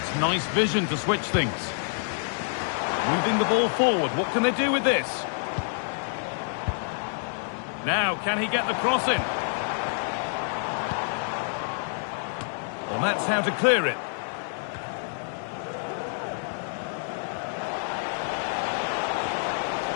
nice vision to switch things. Moving the ball forward. What can they do with this? Now, can he get the cross in? Well, that's how to clear it.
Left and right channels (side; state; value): right; silent; digital silence